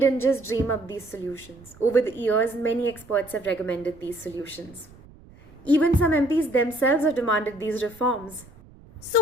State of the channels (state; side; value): noise; right; rumble, 23 dB below the sound